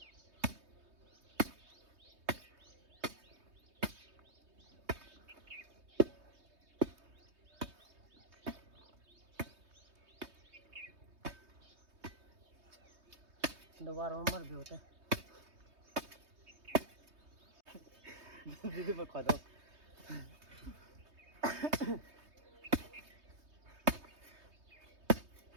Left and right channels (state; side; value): late; left; 3.2 ms